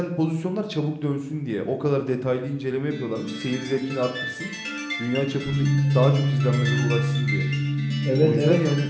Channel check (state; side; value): identical; both; correlation 1.00